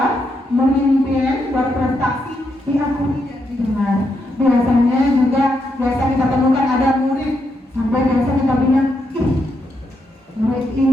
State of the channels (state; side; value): normal; both; correlation 0.81